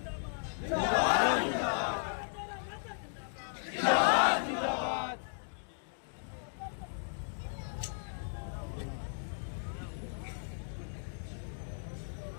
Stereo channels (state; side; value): silent; right; digital silence